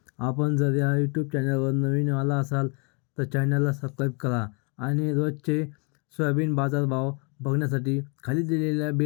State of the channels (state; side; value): quieter; right; 35.4 dB